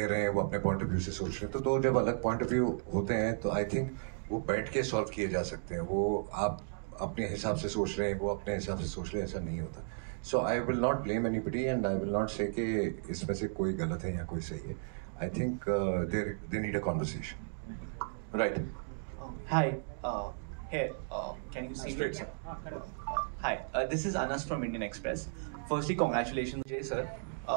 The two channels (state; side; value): silent; left; digital silence